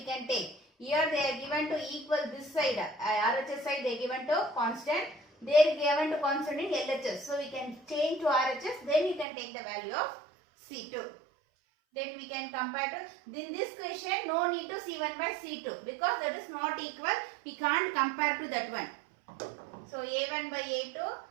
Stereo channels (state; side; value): drops out; left; at 9.2 s